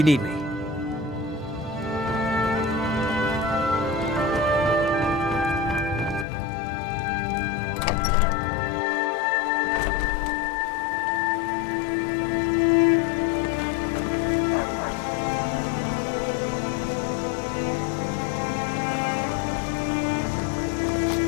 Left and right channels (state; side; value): drops out; right; at 6.2 s